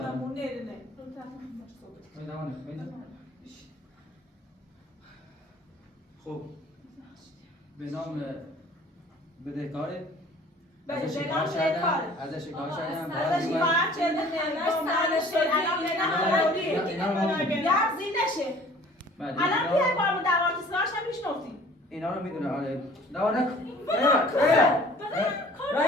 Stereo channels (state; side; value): normal; both; correlation 0.50